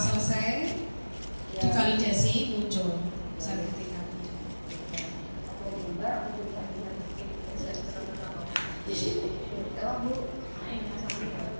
selesai divalidasi muncul sertifikatnya.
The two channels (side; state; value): both; inverted; correlation -1.00